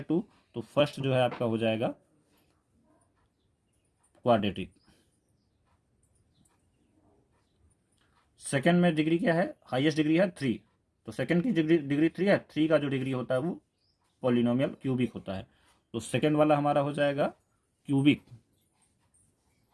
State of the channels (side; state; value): both; identical; correlation 1.00